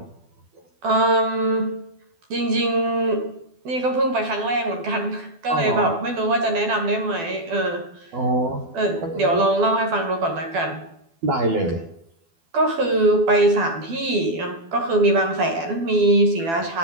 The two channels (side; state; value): left; late; 12 ms